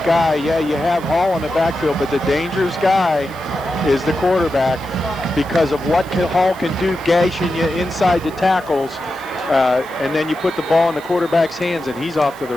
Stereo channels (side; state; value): right; noise; hiss, 22 dB below the sound